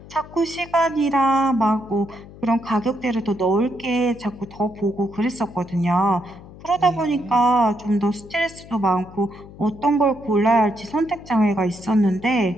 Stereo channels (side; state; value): left; noise; hum, 19 dB below the sound